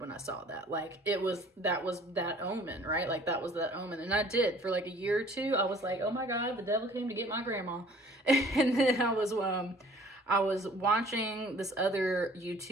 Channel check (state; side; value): normal; both; correlation 0.53